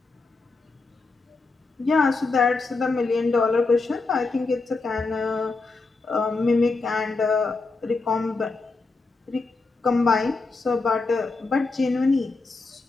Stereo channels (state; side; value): quieter; right; 3.8 dB